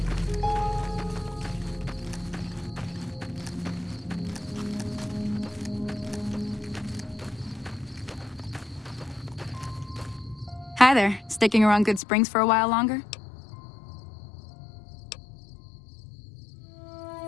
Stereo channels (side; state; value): right; drops out; at 12.0 s